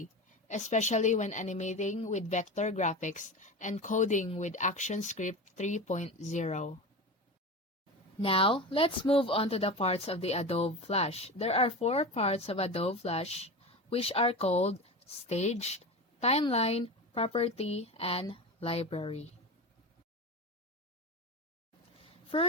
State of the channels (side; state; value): both; normal; correlation 0.26